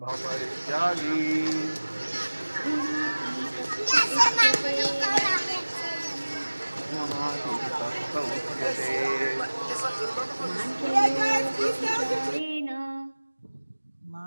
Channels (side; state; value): both; inverted; correlation -1.00